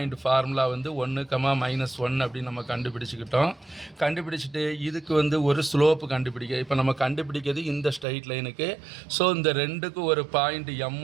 ஃபார்முலா வந்து 1, -1 அப்படின்னு நம்ம கண்டுபிடிச்சிக்கிட்டோம். கண்டுபிடிச்சிட்டு இதுக்கு வந்து ஒரு ஸ்லோப்பு கண்டுபிடிக்க இப்போ நம்ம கண்டுபிடிக்கிறது இந்த ஸ்ட்ரைட் லைனுக்கு. ஸோ இந்த ரெண்டுக்கும் ஒரு பாயிண்ட்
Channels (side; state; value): left; drops out; at 8.1 s